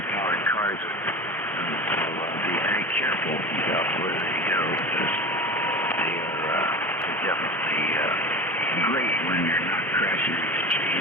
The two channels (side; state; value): both; normal; correlation 0.30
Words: cars will be very careful about where they go because they're definitely great when you're not crashing into